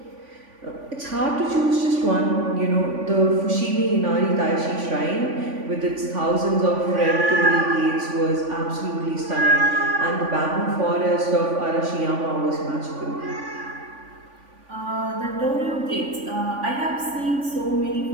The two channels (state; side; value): late; left; 3.5 ms